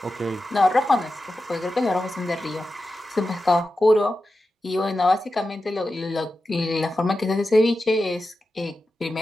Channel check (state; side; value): normal; both; correlation 0.92